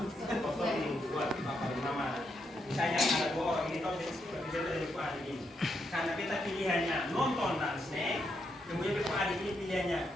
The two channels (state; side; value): normal; both; correlation 0.80